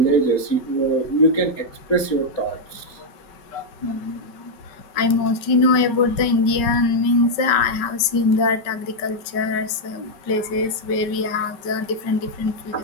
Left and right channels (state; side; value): late; right; 5.2 ms